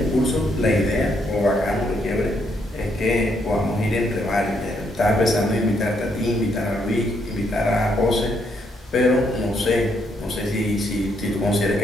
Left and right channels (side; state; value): both; normal; correlation 0.74